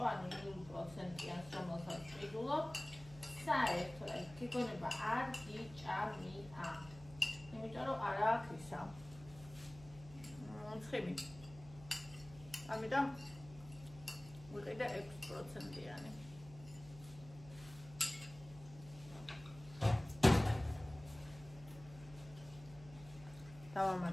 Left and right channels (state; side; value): noise; right; hum, 18 dB below the sound